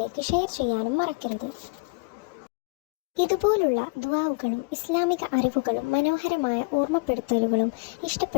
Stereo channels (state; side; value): quieter; right; 30.9 dB